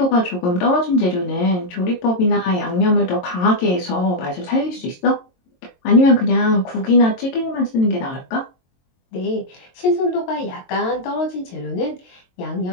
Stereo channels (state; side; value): late; right; 22 ms